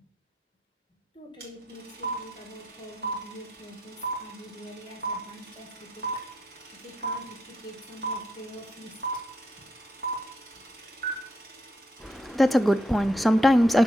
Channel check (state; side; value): normal; both; correlation 0.78